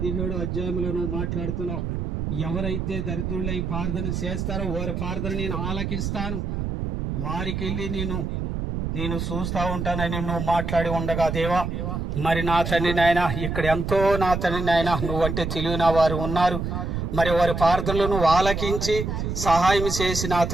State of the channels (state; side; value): noise; right; rumble, 3 dB below the sound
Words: అధ్యాయంలో నువ్వు మాట్లాడుతున్నావు. ఎవరైతే దరిద్రులై ప్రార్థన చేస్తారో వారి ప్రార్థన నేను ఆలకిస్తాను, వారికి వెళ్ళి నేను చూస్తా ఉంటానని నువ్వు మాట్లాడి ఉండగా దేవా మరి నా తండ్రి నాయన ఇక్కడ ఎంతో నా తండ్రి నాయన నువ్వంటే తెలియని వారు ఉన్నారు. మరి వారి ప్రార్థనలు నువ్వు ఆలకించి సహాయం చేసి నా